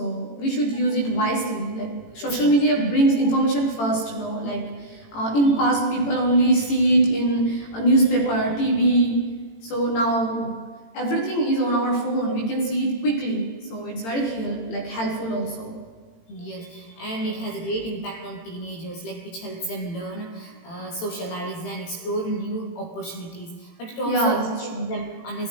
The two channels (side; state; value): right; late; 18 ms